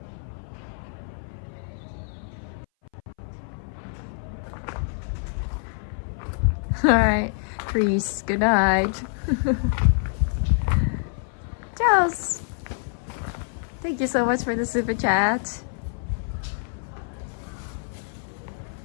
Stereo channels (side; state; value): right; silent; 58 dB below the other